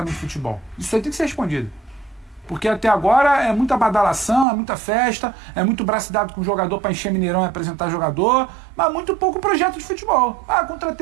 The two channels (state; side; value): drops out; left; at 4.5 s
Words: de futebol. Isso aí tem que ser respondido. Porque até agora é muita badalação, é muita festa, é muito braço dado com o jogador para encher Mineirão e apresentar jogador, mas muito pouco projeto de futebol. Ah,